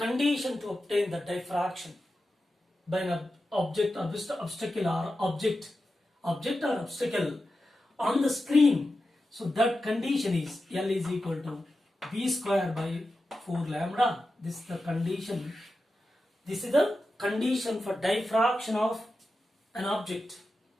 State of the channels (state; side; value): normal; both; correlation 0.92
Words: obtain the diffraction by an object, obstacle or object or obstacle on the screen, so that condition is L is equal to B square by 4 lambda. This is the condition. This is the condition for diffraction of an object